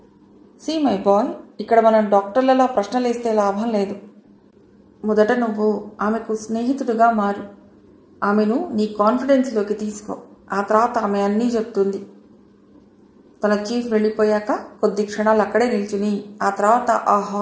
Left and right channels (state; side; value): identical; both; correlation 1.00